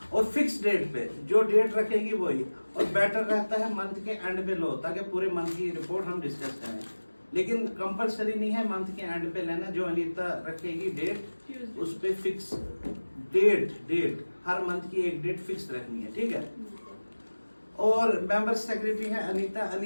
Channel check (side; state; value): both; inverted; correlation -1.00